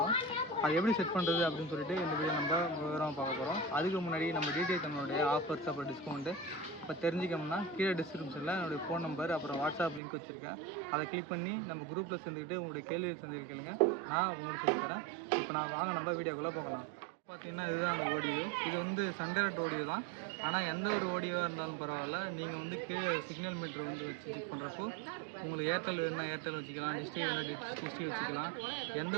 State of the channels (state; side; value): drops out; left; at 10.0 s